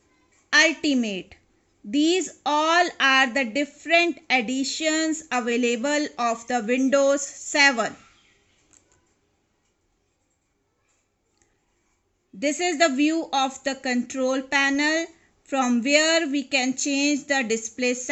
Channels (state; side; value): identical; both; correlation 1.00